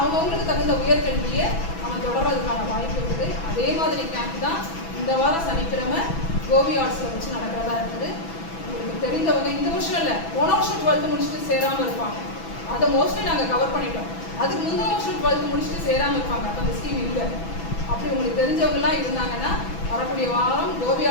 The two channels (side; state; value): right; late; 6.1 ms